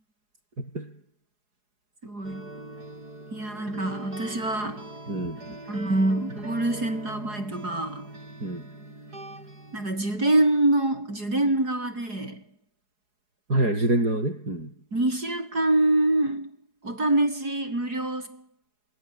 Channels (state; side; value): late; left; 4.8 ms